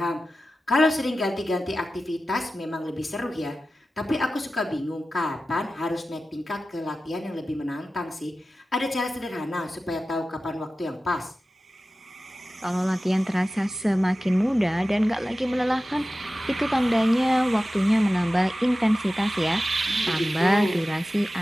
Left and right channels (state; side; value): normal; both; correlation 0.95